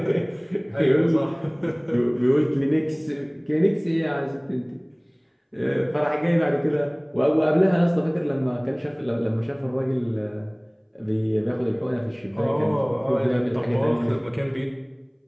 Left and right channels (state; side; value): identical; both; correlation 1.00